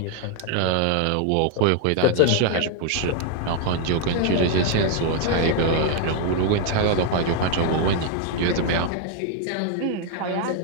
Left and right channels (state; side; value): different; both; correlation 0.00